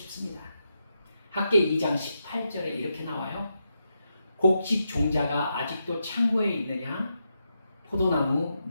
학계 2장 18절에 이렇게 나와요. 곡식 종자가 아직도 창고에 있느냐? 포도나무,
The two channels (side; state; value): both; inverted; correlation -0.85